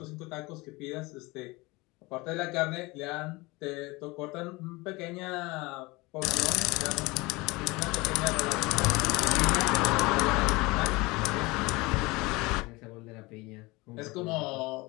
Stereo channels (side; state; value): right; quieter; 23.3 dB